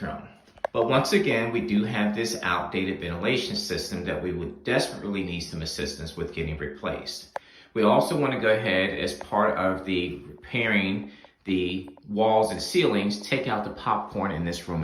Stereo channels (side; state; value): both; identical; correlation 1.00